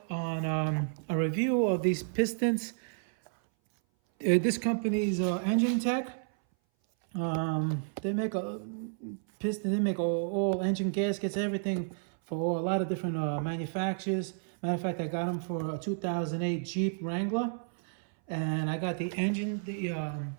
on a review of these pistons. This company's Enginetech. They make a piston. They make all engine gaskets, everything for a lot of different manufacturers. Matter of fact, I got them for a 2008 Jeep Wrangler, and I got the engine,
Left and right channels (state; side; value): silent; left; 57 dB below the other